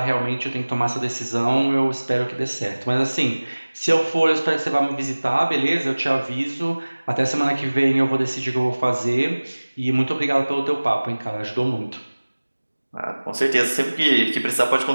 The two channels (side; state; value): both; inverted; correlation -1.00